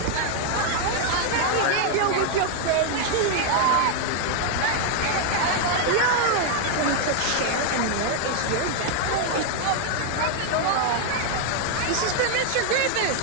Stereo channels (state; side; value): different; both; correlation 0.00